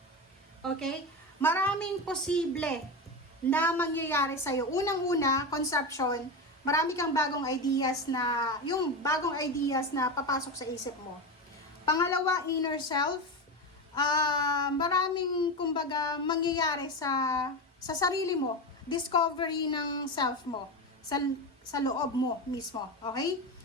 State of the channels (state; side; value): normal; both; correlation 0.18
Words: Okay? Maraming posible na mangyayari sa'yo. Unang-una, conception, marami kang bagong ideas na, yung bagong ideas na papasok sa isip mo. Pangalawa, inner self, maraming, kumbaga, mangyayari sa sarili mo. Discovery ng self mo, sa loob mo mismo. Okay?